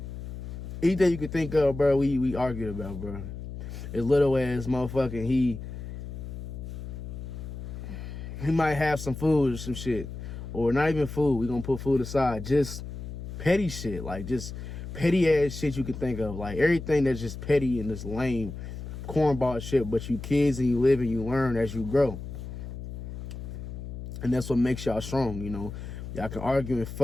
Anything you could think of, bro, we argued about, bro. As little as motherfucking he might have some food or some shit. Or not even food. We gonna put food aside. Just petty shit. Like, just petty ass shit you can think of. Like, everything that's just petty and just lame cornball shit. But you kids and you live and you learn as you grow. And that's what makes y'all strong, you know. Y'all can argue and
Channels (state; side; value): noise; left; hum, 9 dB below the sound